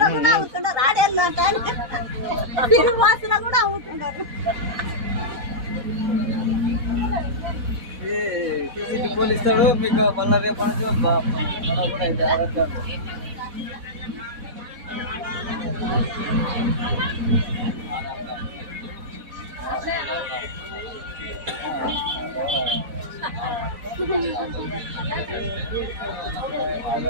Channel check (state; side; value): late; left; 4.1 ms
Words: అవుతున్నారు, ఆడేళ్ళు తిరుగు బస్సులో కూడా అవుతున్నారు. పోలీసులు మీకు మళ్ళీ రేపు కూడా అయితే ఆధార్ కార్డు